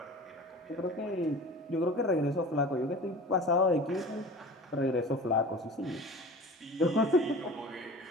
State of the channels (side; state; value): both; normal; correlation 0.38